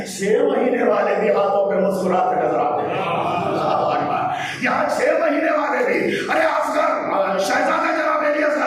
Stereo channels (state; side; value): identical; both; correlation 1.00